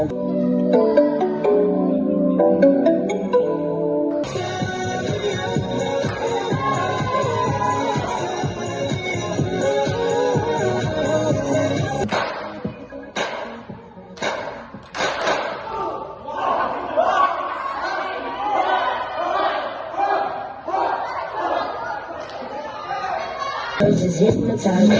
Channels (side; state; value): both; identical; correlation 1.00